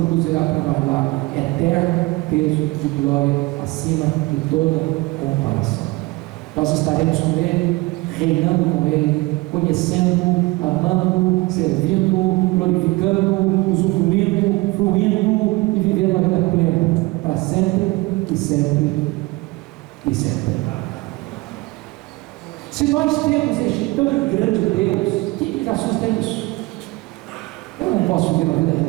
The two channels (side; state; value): left; quieter; 22.2 dB